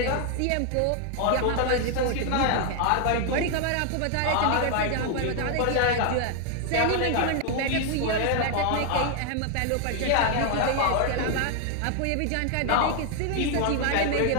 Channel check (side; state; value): both; different; correlation 0.00